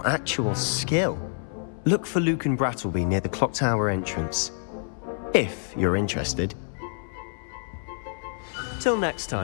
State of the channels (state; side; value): silent; right; 58 dB below the other